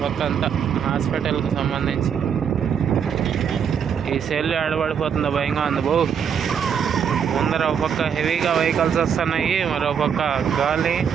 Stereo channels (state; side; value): quieter; left; 7.6 dB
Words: పక్క అంతా హాస్పిటల్కి సంబంధించి. ఈ సెల్ ఆడబడిపోతుందో భయంగా ఉంది ముందర ఒక పక్క హెవీగా వెహికల్స్ వస్తున్నాయి, మరో పక్క గాలి.